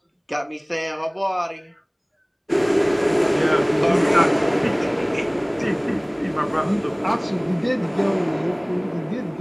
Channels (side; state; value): both; identical; correlation 1.00